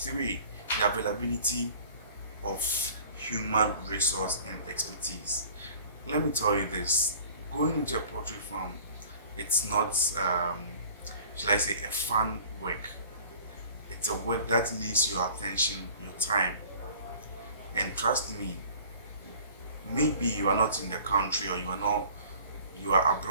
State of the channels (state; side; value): inverted; both; correlation -0.47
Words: the availability of human resource and expertise. Let me tell you this: going into a poultry farm, it's not shall I say, a fun work. It's a work that needs your attention, your time. And trust me, maybe you are not in the country, or you are